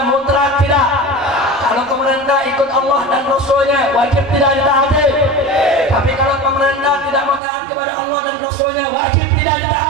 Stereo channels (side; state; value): left; drops out; at 7.4 s